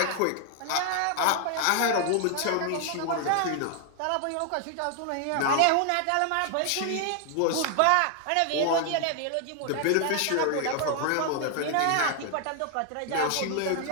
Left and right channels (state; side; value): different; both; correlation 0.00